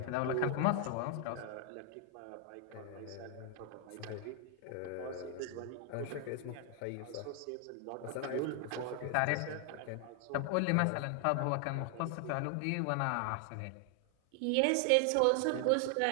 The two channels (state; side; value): different; both; correlation 0.00